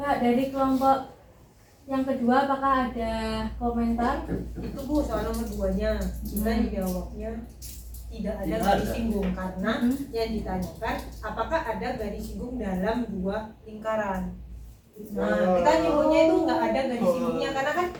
dari kelompok yang kedua apakah ada komentar? Itu Bu, soal nomor 2-nya. Kita dijawabnya tidak ada Tidak garis ada. singgung karena yang ditanyakan apakah ada garis singgung dalam dua lingkaran. Nah, kita nyebutnya itu nggak ada garis singgungnya karena kan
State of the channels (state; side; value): identical; both; correlation 1.00